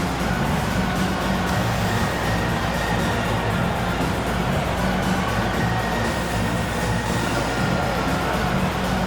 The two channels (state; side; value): identical; both; correlation 1.00